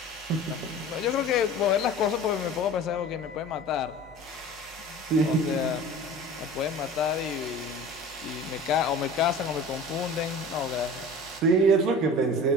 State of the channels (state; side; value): normal; both; correlation 0.40